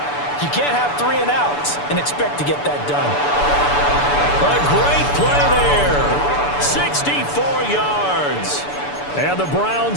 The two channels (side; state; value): right; late; 6.9 ms